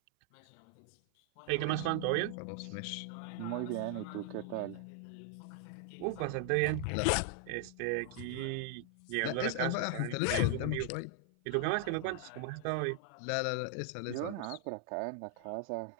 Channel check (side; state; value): both; different; correlation 0.00